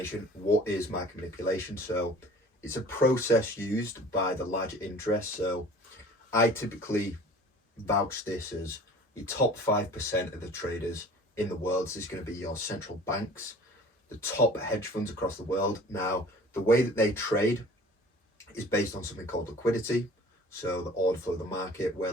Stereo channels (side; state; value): both; normal; correlation 0.46